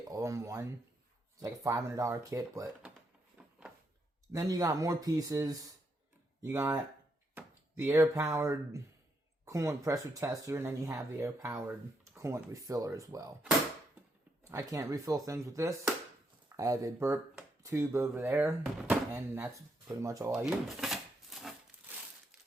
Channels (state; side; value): normal; both; correlation 0.78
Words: all in one. It's like a $500 kit, but then you got more pieces. You got the air-powered coolant pressure tester, and then you have the air-powered coolant refiller as well. I can't refill things with this. I have a burp tube over there, and that's pretty much all I use.